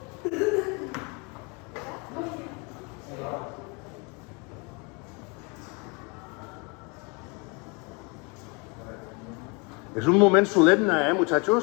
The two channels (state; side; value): quieter; right; 31.0 dB